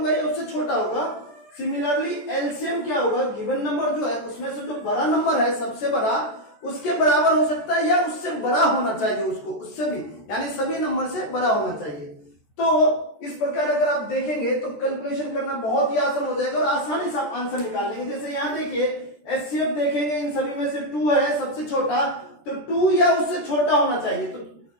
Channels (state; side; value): late; right; 14 ms